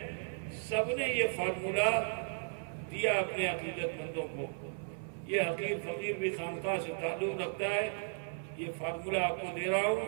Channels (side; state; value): left; silent; 54 dB below the other